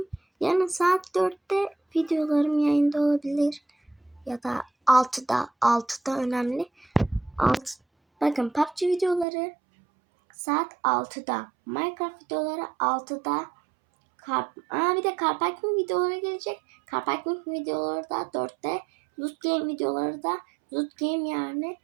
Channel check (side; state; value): left; drops out; at 9.2 s